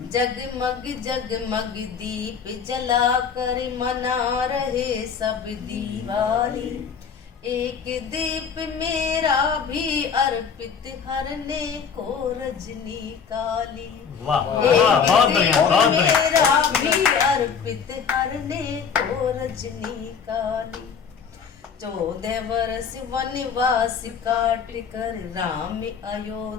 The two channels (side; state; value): right; quieter; 6.6 dB